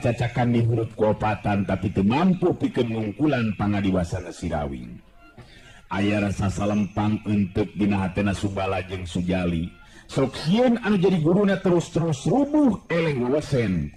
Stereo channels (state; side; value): identical; both; correlation 1.00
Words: di huruf kuopatan tapi teu mampu pikeun ngungkulan pangadiwasana si Rawing. Aya rasa salempang enteuk dina hatena Subala jeung Sujali. Sok sieun anu jadi guruna terus-terus rubuh eleng wewesen